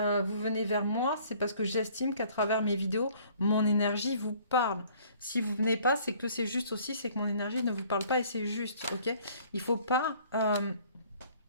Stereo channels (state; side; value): inverted; both; correlation -0.56